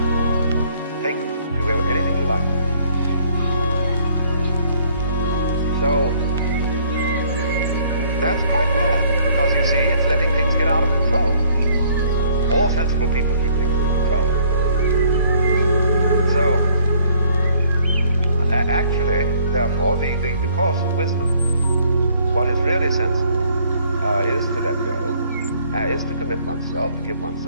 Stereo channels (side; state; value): both; inverted; correlation -0.62